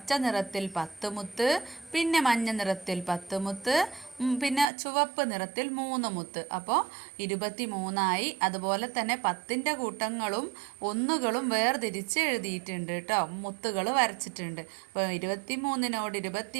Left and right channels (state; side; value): drops out; left; at 4.7 s